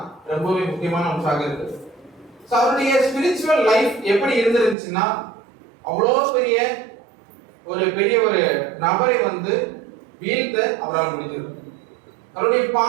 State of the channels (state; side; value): drops out; left; at 4.8 s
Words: ரொம்பவே முக்கியமான அம்சமாக இருக்கு. அவருடைய ஸ்பிரிச்சுவல் லைஃப் எப்படி இருந்துருந்துச்சுன்னா, அவ்வளோ பெரிய ஒரு நபரை வீழ்த்த அவரால் முடிஞ்சது. அவருடைய